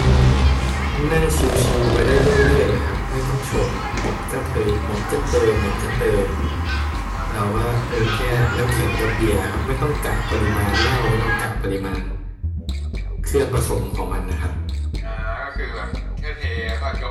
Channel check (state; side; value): identical; both; correlation 1.00